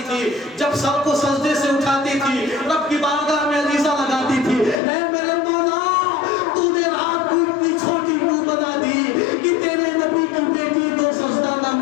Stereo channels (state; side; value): drops out; right; at 4.8 s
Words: تھی. جب سب کو سجدے سے اٹھاتی تھی رب کی بارگاہ میں عریضہ لگاتی تھی, اے میرے مولا تو نے رات کو اتنی چھوٹی کیوں بنا دی کہ تیرے نبی کی بیٹی تو سجدہ نہ